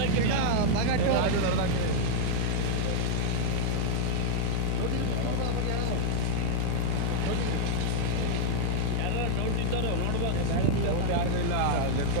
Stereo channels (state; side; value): different; both; correlation -0.01